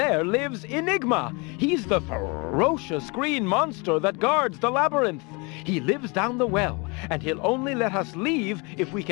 lives Enigma. He's the ferocious green monster that guards the labyrinth. He lives down the well, and he'll only let us leave if we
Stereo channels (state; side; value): quieter; right; 29.6 dB